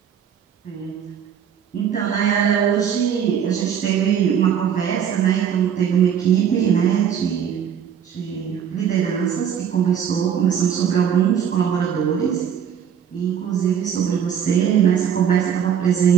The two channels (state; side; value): quieter; left; 8.4 dB